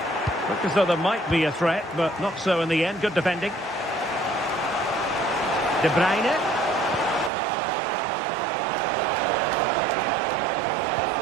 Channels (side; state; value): left; drops out; at 7.3 s